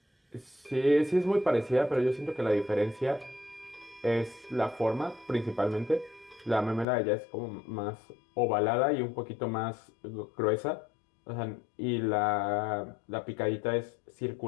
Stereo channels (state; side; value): drops out; right; at 6.9 s